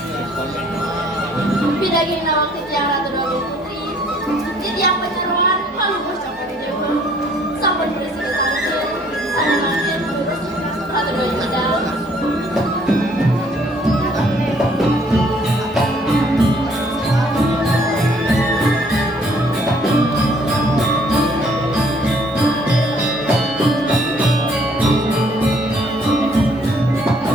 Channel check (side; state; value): both; normal; correlation 0.62